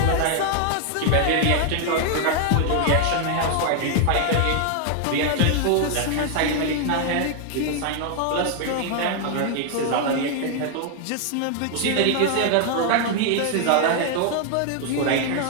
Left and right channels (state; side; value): different; both; correlation 0.00